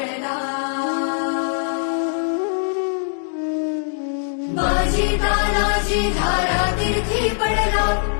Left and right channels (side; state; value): right; silent; digital silence